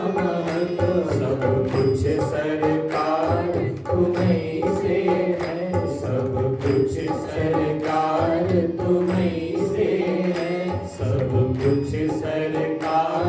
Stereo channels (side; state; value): both; identical; correlation 1.00